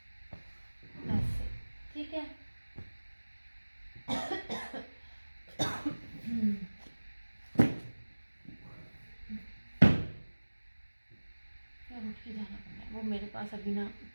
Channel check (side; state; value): both; inverted; correlation -1.00